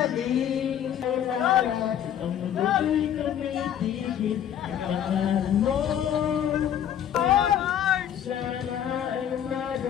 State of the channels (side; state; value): right; quieter; 9.9 dB